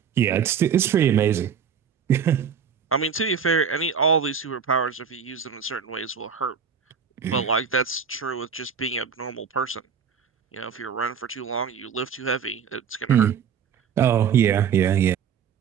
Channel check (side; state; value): left; quieter; 7.0 dB